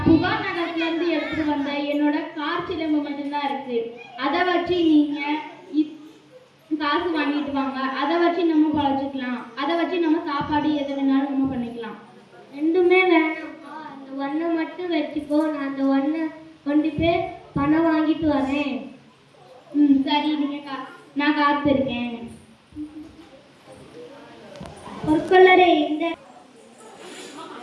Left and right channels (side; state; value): both; identical; correlation 1.00